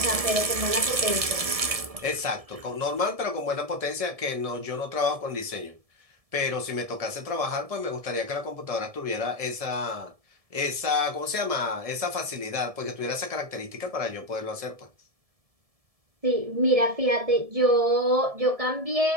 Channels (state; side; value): late; left; 1.7 ms